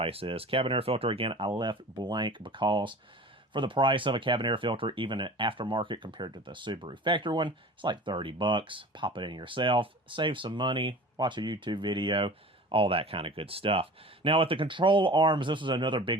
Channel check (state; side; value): normal; both; correlation 0.39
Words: is. Cabin air filter, again, I left blank because for the price of a cabin air filter, even an aftermarket compared to the Subaru factory one, it's like $30. Pop it in yourself, save some money, watch a YouTube video, all that kind of good stuff. Now, with the control arms, this was another